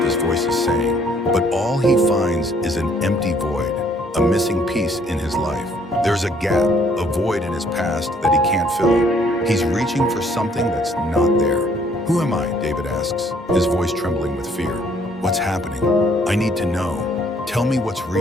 this voice is saying. But all he finds is an empty void, a missing piece in his life. There's a gap, a void in his past that he can't fill. He's reaching for something that's not there. Who am I? David asks, his voice trembling with fear. What's happening? I need to know. Tell me what's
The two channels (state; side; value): normal; both; correlation 0.64